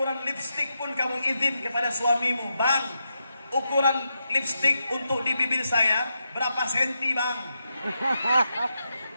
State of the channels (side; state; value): both; inverted; correlation -0.85